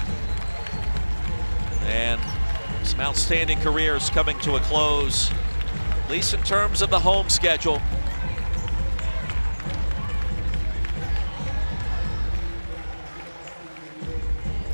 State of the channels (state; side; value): inverted; both; correlation -1.00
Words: and some outstanding careers coming to a close, at least in terms of the home schedule.